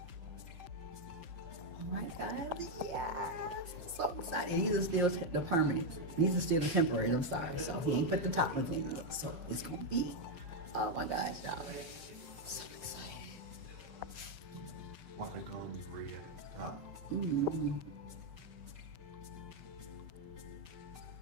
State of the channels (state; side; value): late; left; 5.8 ms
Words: All right, guys. Yes. I'm so excited. These are still the permanent. These are still the temporary. I'm sorry. So he ain't put the top ones in yet. So it's gonna be. Oh my gosh, y'all. I'm so excited. Why the gums red at the top? Mm.